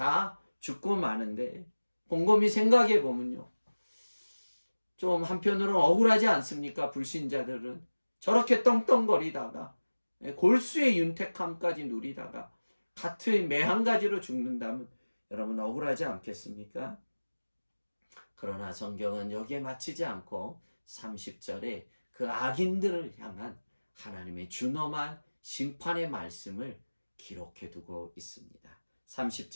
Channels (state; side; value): inverted; both; correlation -1.00